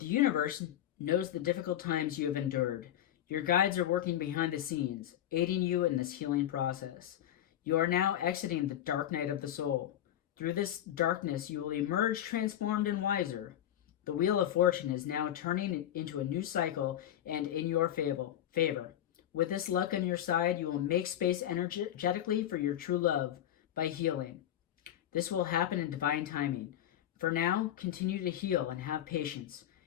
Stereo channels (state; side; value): quieter; right; 11.6 dB